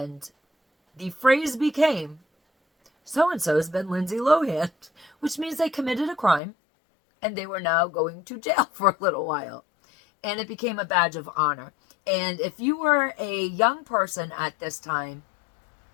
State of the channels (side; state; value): right; drops out; at 6.4 s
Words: the phrase became, so-and-so has been Lindsey Lohan, which means they committed a crime, and they were now going to jail for a little while. And it became a badge of honor. And if you were a young person at this time,